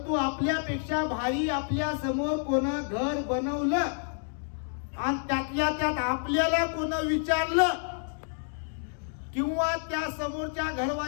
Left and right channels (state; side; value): silent; right; 59 dB below the other